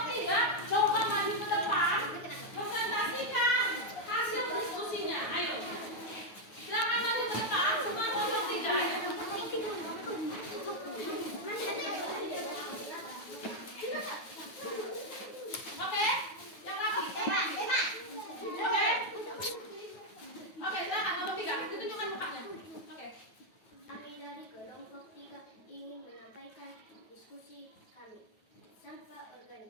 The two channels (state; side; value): late; right; 9.3 ms